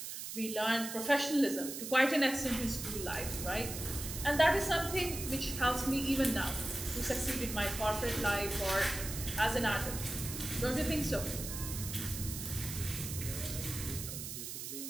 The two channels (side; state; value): right; noise; hiss, 7 dB below the sound